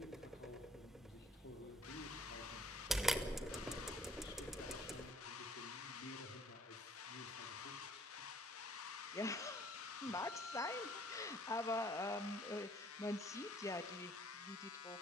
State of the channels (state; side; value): normal; both; correlation 0.58